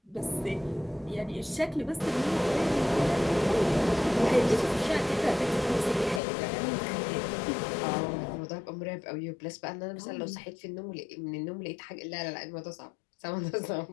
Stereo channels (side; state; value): right; drops out; at 6.2 s